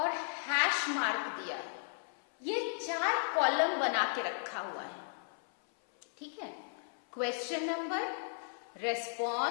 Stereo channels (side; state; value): right; silent; 54 dB below the other